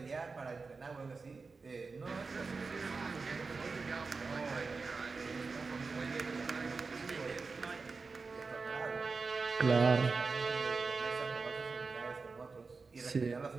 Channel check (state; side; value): quieter; left; 4.3 dB